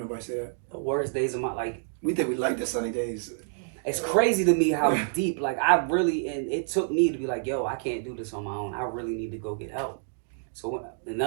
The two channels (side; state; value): left; silent; digital silence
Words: say that. The worst days of my, like... We think we like the sunny days. It's crazy to me how deep, like, and it took me to be like, yo, I can't do this on my own. I really need to go get help. So